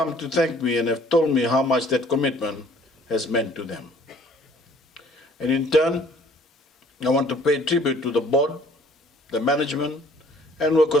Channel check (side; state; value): both; normal; correlation 0.56